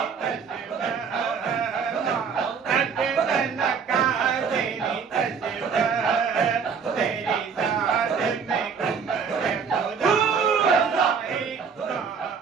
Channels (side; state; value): left; quieter; 6.2 dB